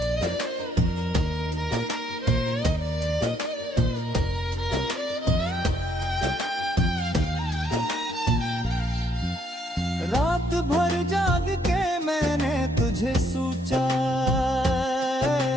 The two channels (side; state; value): both; normal; correlation 0.70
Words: रात भर जाग के मैंने तुझे सोचा,